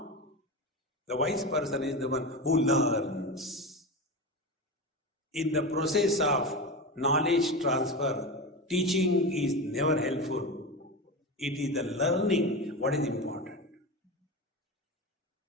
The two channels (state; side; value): normal; both; correlation 0.22